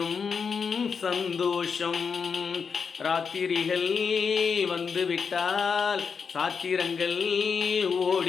சந்தோஷம். ராத்திரிகள் வந்துவிட்டால் சாத்திரங்கள்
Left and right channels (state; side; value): quieter; right; 5.9 dB